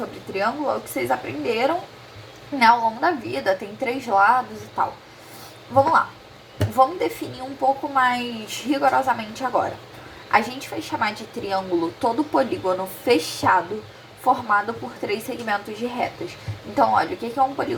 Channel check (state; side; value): identical; both; correlation 1.00